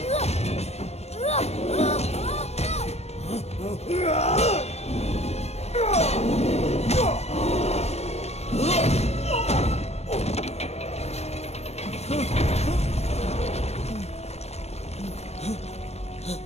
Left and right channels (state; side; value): late; right; 0.31 ms